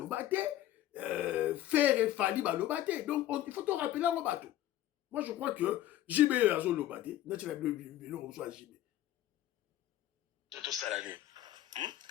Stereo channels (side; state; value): right; quieter; 13.4 dB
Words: Fer et Fali, Lobate. Donc, il faut te rappeler en bateau. Moi, je crois que JB est à Lobate. Naturellement, on JB. Tout ça l'année.